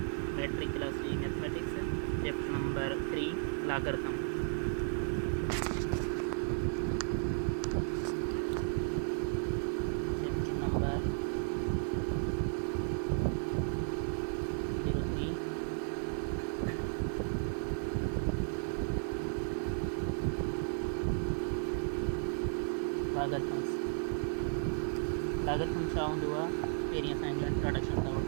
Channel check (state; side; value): silent; left; digital silence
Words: मैट्रिक क्लास जी mathematics chapter number 3 logarithm. Chapter number 03 logarithms. Logarithm छा हूंदो आहे, पहिरीं असां हिन जो इंट्रोडक्शन था